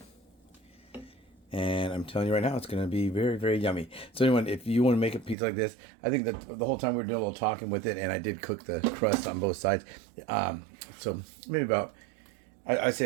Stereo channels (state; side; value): drops out; left; at 5.4 s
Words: And I'm telling you right now, it's going to be very, very yummy. So anyone, if you want to make a pizza like this, I think that the whole time we were doing a little talking with it, and I did cook the crust on both sides. So maybe about, I'd